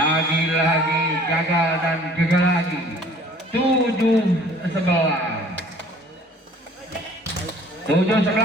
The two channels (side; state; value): both; normal; correlation 0.52